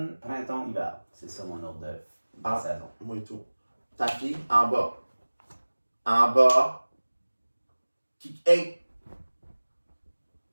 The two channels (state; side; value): inverted; both; correlation -1.00